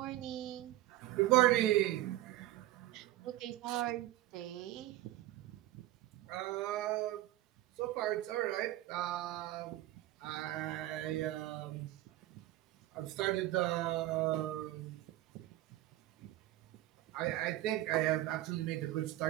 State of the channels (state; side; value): quieter; left; 15.5 dB